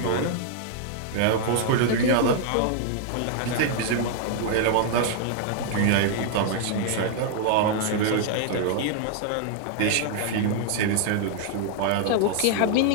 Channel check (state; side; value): different; both; correlation 0.00